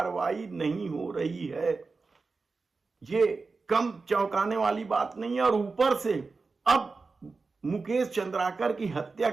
नहीं हो रही है। ये कम चौंकाने वाली बात नहीं है। और ऊपर से अब मुकेश चंद्राकर की हत्या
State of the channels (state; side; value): quieter; left; 4.2 dB